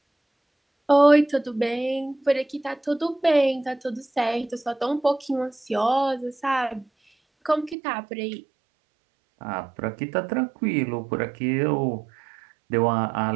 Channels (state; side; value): drops out; left; at 7.8 s